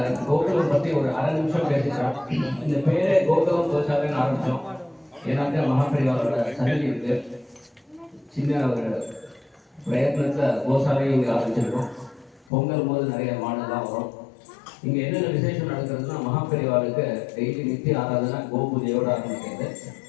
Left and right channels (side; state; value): right; drops out; at 12.5 s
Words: கோகுலம் பற்றி ஒரு அரை நிமிஷம் பேசிக்கிறோம். இந்த பேரே கோகுலம் கோசாலைன்னு ஆரம்பித்தோம். ஏன்னாக்கா மகாபரிவாரோட சன்னதி இருக்கு. சின்ன ஒரு பிரயத்னத்தில் கோசாலையும் இங்கே ஆரம்பிச்சிருக்கோம். பொங்கல் போது நிறைய மாடெல்லாம் வரும். இங்கே என்னென்ன விசேஷம் நடக்கிறதுனா மகாபரிவாளுக்கு டெய்லி நித்திய ஆராதனை கோபூஜையோடு ஆரம்பிக்கிறது